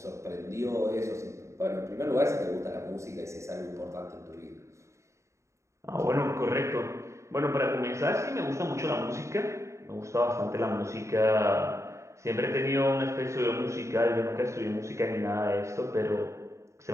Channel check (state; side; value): late; left; 0.14 ms